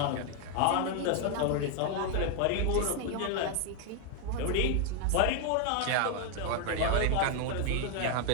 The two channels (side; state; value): both; different; correlation 0.00